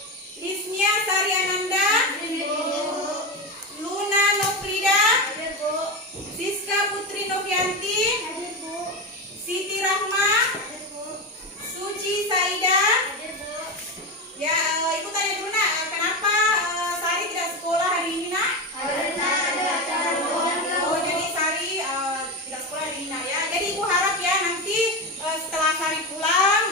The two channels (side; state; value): both; normal; correlation 0.17